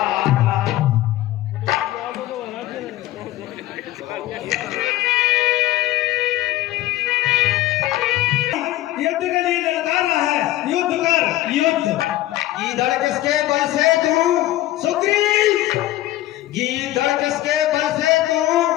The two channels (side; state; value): right; quieter; 15.5 dB